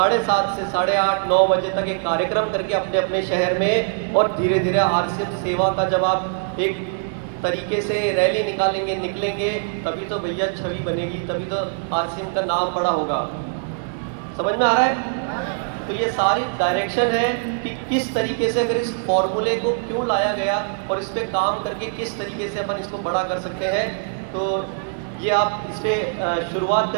से 8:30 9 बजे तक एक कार्यक्रम करके अपने अपने शहर में, और धीरे धीरे आरसीएम सेवा का जब आप एक तरीके से रैली निकलेंगे, तभी तो भैया छवि बनेगी, तभी तो आरसीएम का नाम बड़ा होगा। समझ में आ रहा है? तो ये सारी डायरेक्शन है कि किस तरीके से अगर इस फॉर्मूले को क्यों लाया गया और इस पे काम करके किस तरीके से अपन इसको बड़ा कर सकते हैं। तो ये आप इस पे शुरुआत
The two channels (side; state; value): left; silent; digital silence